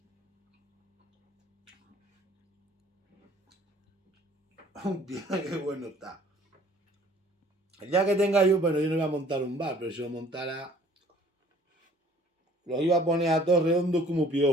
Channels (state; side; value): normal; both; correlation 0.54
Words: Hostia, qué bueno está. El día que tenga yo, bueno, yo no voy a montar un bar, pero si lo montara, los iba a poner a todos redondos como